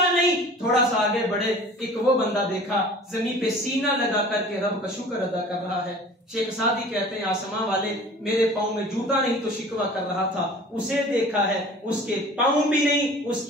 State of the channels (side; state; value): both; normal; correlation 0.44